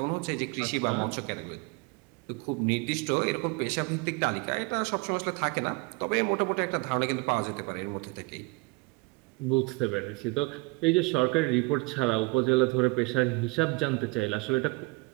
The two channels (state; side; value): quieter; left; 26.7 dB